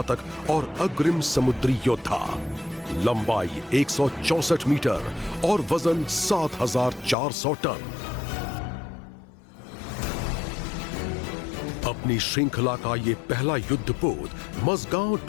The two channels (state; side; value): drops out; right; at 7.2 s